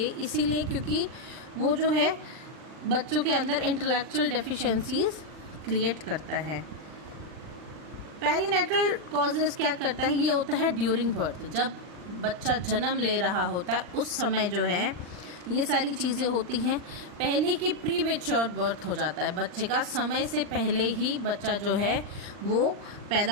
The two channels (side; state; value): left; late; 40 ms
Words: इसीलिए क्योंकि वो जो है बच्चों के अंदर इंटेलेक्चुअल डेफिशिएंसीज क्रिएट करता है। पेरीनेटल कॉजेज क्या करता है, ये होता है ड्यूरिंग बर्थ, जब बच्चा जन्म ले रहा होता है उस समय जो है ये सारी चीज़ें होती हैं। पहले की प्रीमेच्योर बर्थ हो जाता है, बच्चे का समय से पहले ही बच्चा जो है वो